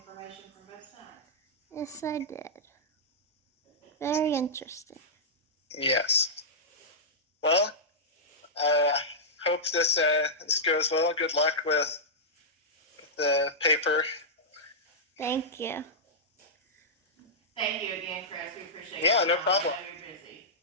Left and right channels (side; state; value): both; normal; correlation -0.12